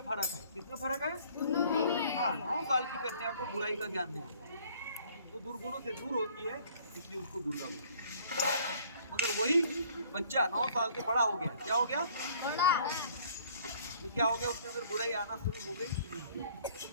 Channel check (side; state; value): both; inverted; correlation -0.57